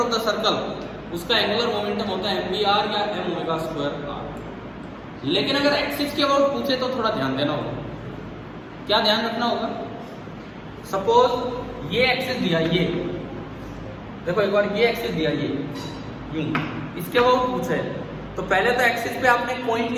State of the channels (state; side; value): identical; both; correlation 1.00